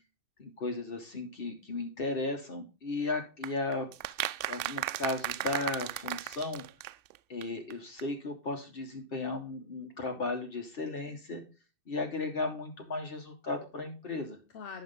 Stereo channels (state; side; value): late; right; 2.6 ms